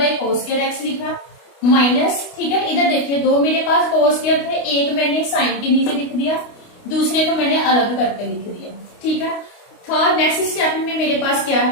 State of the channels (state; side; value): late; right; 29 ms